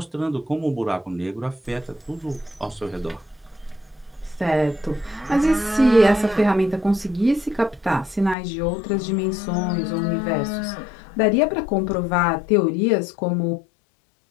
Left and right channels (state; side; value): drops out; right; at 8.3 s